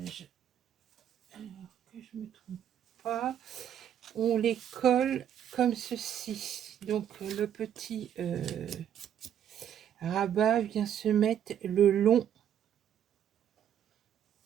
alors que je me trompe pas, on les colle comme ceci. Donc le petit rabat vient se mettre le long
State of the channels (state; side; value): quieter; left; 9.7 dB